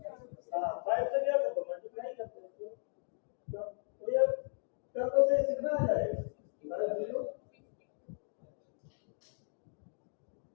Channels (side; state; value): right; silent; digital silence